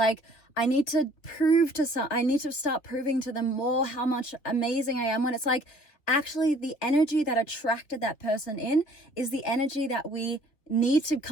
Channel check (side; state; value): right; late; 3.2 ms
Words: I need to start proving to them more how much amazing I am, when it's like, actually the energy that attracted that person in is the energy that we need to